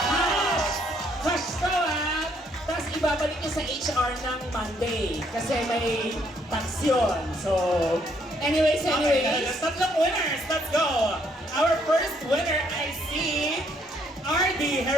cash! Cash to ha! Tapos ibabalik nyo sa HR ng Monday kasi may tax yun. So, anyways. Okay, tatlong winners. Let's go. Our first winner, I see RD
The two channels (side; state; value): both; normal; correlation 0.69